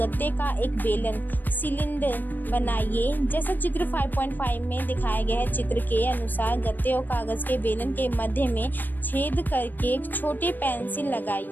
का एक बेलन सिलेंडर बनाइए। जैसा चित्र 5.5 में दिखाया गया है। चित्र के अनुसार गत्ते और कागज के बेलन के मध्य में छेद करके एक छोटे पेंसिल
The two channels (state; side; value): late; right; 0.090 ms